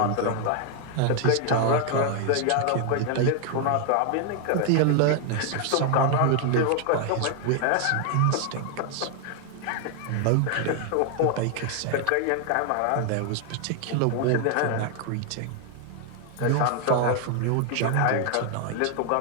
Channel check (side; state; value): both; different; correlation 0.00